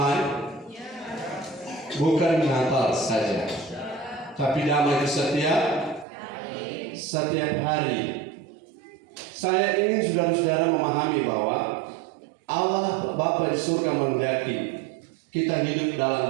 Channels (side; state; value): left; drops out; at 6.1 s